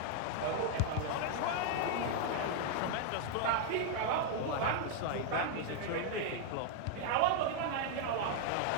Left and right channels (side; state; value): both; different; correlation 0.00